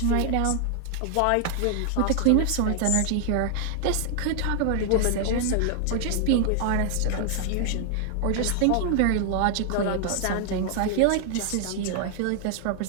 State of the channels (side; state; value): both; different; correlation 0.00